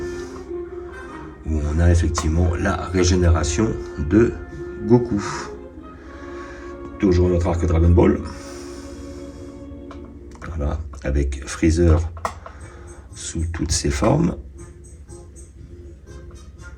où on a effectivement la régénération de Goku. Toujours notre arc Dragon Ball. Voilà, avec Freezer sous toutes ses formes.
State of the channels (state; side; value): identical; both; correlation 1.00